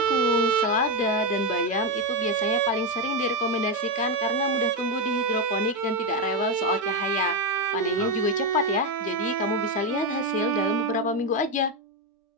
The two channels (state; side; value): normal; both; correlation 0.08